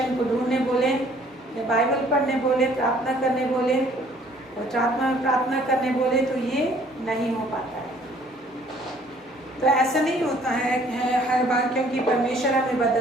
को ढूंढने बोले या बाइबल पढ़ने बोले, प्रार्थना करने बोले और आत्मा में प्रार्थना करने बोले, तो ये नहीं हो पाता है। तो ऐसा नहीं होता है हर बार, क्योंकि परमेश्वर हमें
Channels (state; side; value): normal; both; correlation 0.59